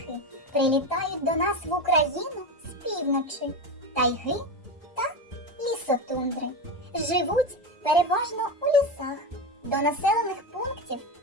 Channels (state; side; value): normal; both; correlation 0.19